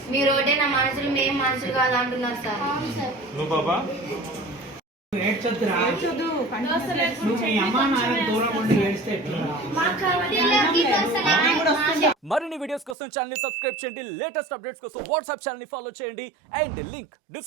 మీరు ఒకటే నా మనుషులు, మేము మనుషులు కాదు అంటున్నారు సార్. నువ్వు బాబా ఏడ్చొద్దురా, నువ్వు మీ అమ్మా నాన్న దూరం ఉండి ఏడిస్తే ఎట్లా? మరిన్ని వీడియోస్ కోసం ఛానల్ ని సబ్స్క్రైబ్ చేయండి. లేటెస్ట్ అప్డేట్స్ కోసం వాట్సాప్ ఛానల్ ని ఫాలో చేయండి. అండ్ లింక్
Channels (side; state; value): left; drops out; at 13.0 s